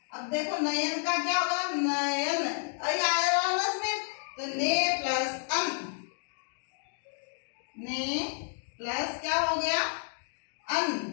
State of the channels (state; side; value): silent; right; 57 dB below the other